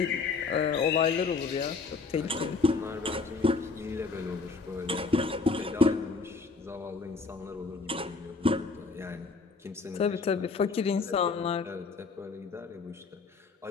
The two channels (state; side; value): quieter; right; 4.3 dB